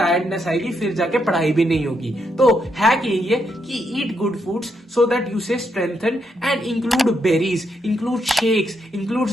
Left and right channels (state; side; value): normal; both; correlation 0.79